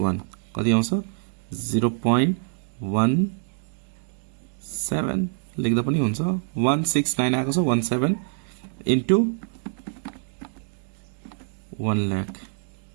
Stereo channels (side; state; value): left; silent; 61 dB below the other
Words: कति आउँछ? 0.17 लेख्दा पनि हुन्छ. 169 आएको छ. 17 into 1 lakh.